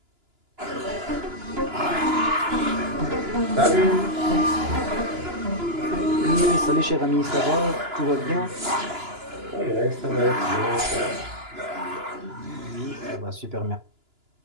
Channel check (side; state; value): left; late; 2.9 ms